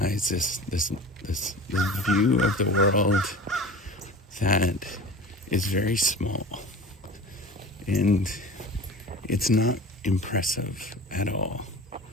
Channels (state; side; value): normal; both; correlation 0.37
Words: this view of the world that is very small, and it's not impressive at all.